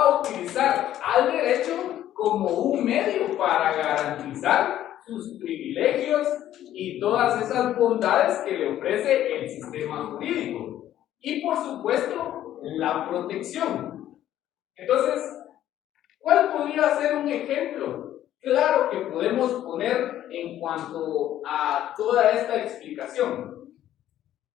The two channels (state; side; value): quieter; right; 12.2 dB